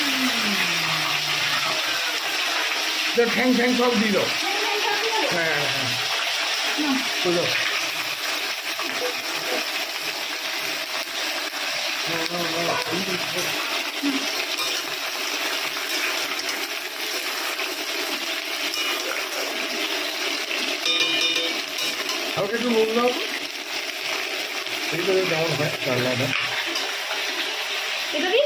ঠ্যাং ঠ্যাং সব দিয়ে দাও। হ্যাঁ হ্যাঁ হ্যাঁ, দাও দাও। হালকা একটু নুন দাও, এই করে দাও, হয় রান্নাটা এটা দিই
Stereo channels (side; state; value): both; identical; correlation 1.00